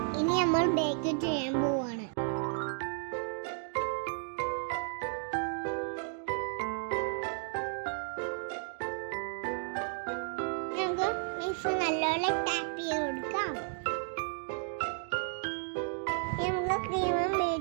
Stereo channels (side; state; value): left; silent; 56 dB below the other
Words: ഇനി നമ്മൾ ബേക്ക് ചെയ്യാൻ പോവാണ്. നമുക്ക് മിക്സ് നല്ലപോലെ ടാപ്പ് ചെയ്ത് കൊടുക്കാം. നമുക്ക് ക്രീമും